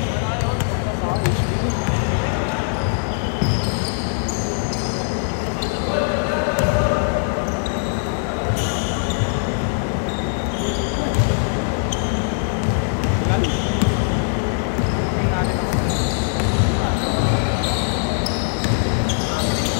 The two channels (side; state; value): right; silent; digital silence